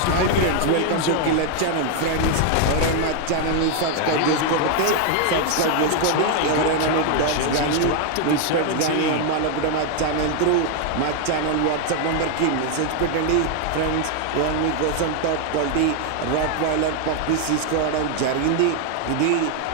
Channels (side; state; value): both; different; correlation 0.00